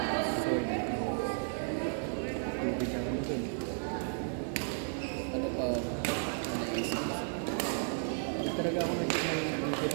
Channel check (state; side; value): silent; left; digital silence